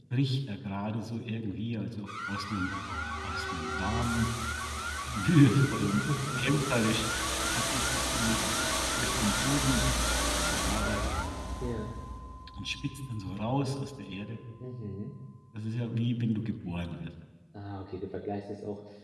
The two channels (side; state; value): both; identical; correlation 1.00